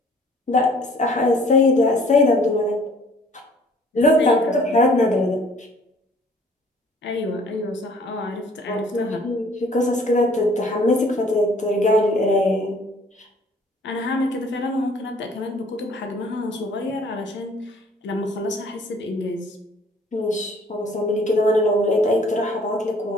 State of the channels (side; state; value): both; normal; correlation 0.56